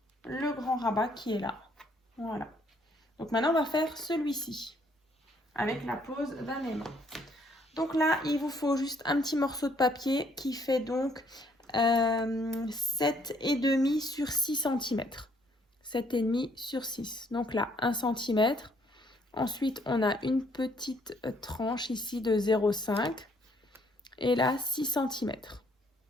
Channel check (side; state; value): both; normal; correlation 0.66